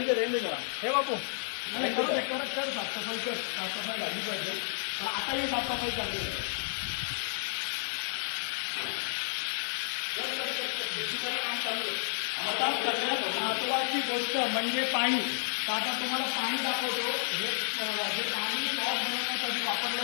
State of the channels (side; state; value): right; silent; digital silence